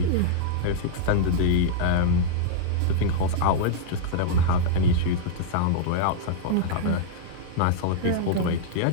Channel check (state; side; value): different; both; correlation -0.01